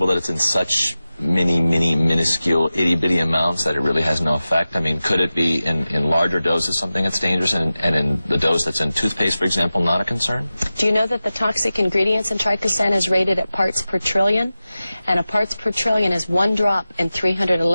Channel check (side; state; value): both; inverted; correlation -0.95